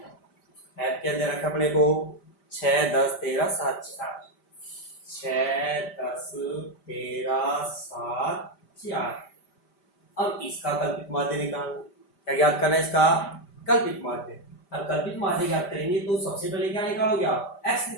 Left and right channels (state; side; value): late; right; 5.1 ms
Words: ऐप क्या दे रखा है अपने को 6 10 13 7 4, 6 10 13 7 4। अब इसका कल्पित माध्य निकालना, क्या ज्ञात करना है इसका कल्पित माध्य। अब कल्पित माध्य ज्ञात करेंगे तो सबसे पहले क्या निकालोगे आप x